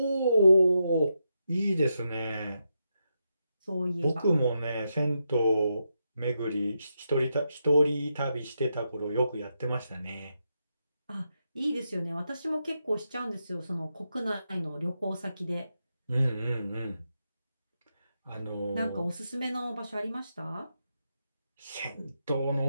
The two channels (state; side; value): inverted; both; correlation -0.85